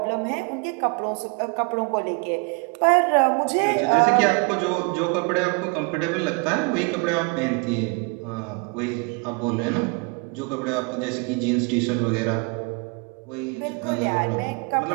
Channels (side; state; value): left; quieter; 31.7 dB